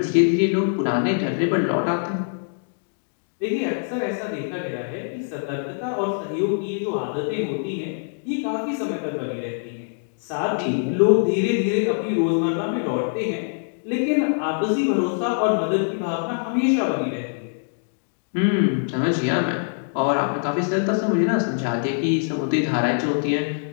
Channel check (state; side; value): silent; right; digital silence